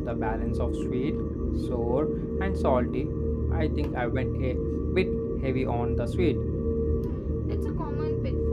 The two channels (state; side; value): identical; both; correlation 1.00